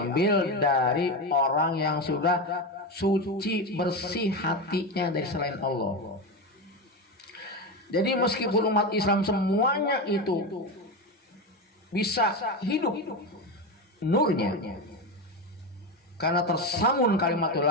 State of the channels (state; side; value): normal; both; correlation 0.17